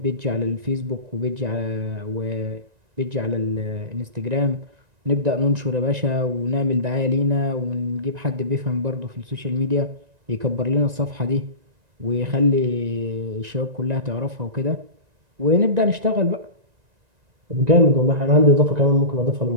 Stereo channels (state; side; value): late; left; 1.9 ms